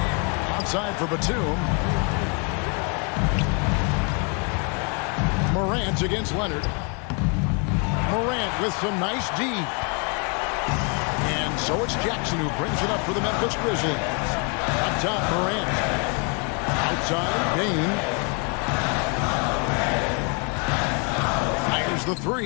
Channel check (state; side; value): quieter; right; 36.2 dB